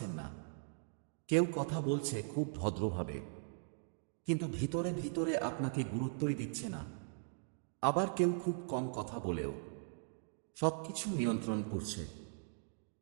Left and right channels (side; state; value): left; silent; digital silence